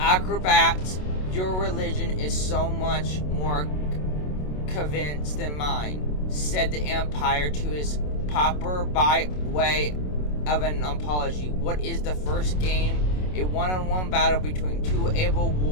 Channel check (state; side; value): late; right; 27 ms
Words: your religion is so much more convinced than mine, said the Empire to his popper by way of an apology. What is the first game? A one-on-one battle between two able